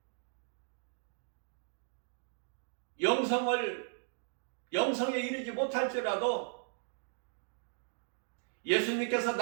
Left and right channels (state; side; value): silent; left; digital silence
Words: 영성에 이르지 못할지라도 예수님께서